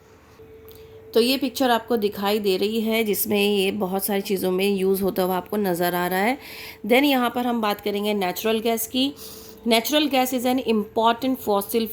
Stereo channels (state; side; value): identical; both; correlation 1.00